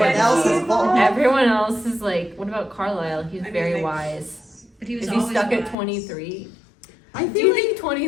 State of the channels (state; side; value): drops out; right; at 5.8 s